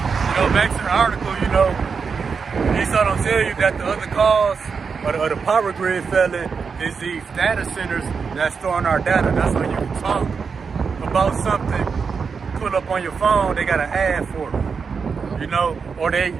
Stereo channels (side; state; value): left; quieter; 5.6 dB